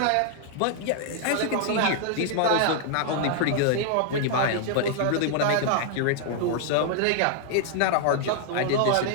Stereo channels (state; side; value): different; both; correlation 0.00